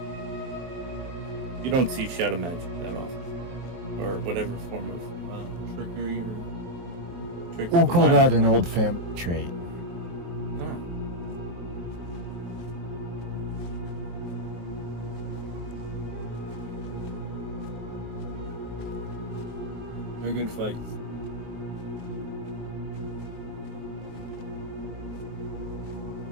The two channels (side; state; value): left; late; 23 ms